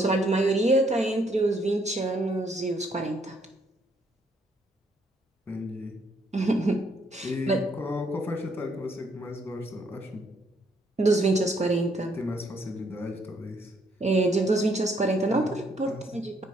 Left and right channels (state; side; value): normal; both; correlation 0.70